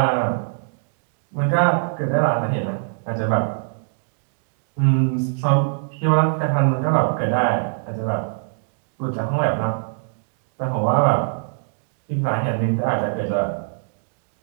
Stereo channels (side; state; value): left; silent; digital silence